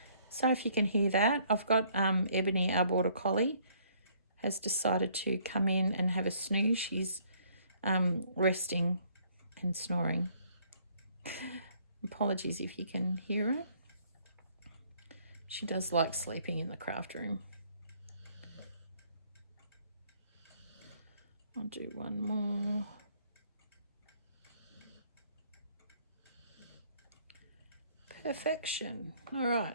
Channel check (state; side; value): inverted; both; correlation -0.63